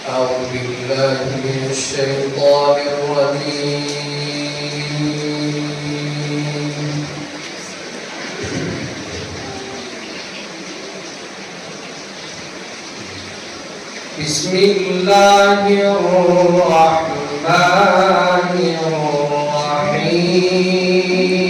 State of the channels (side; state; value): both; identical; correlation 1.00